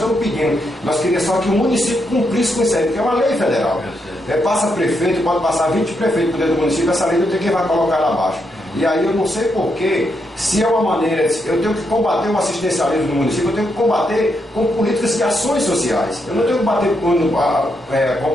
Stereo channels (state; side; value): normal; both; correlation 0.80